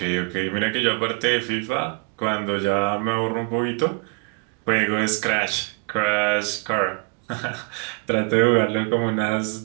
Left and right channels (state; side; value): quieter; left; 36.0 dB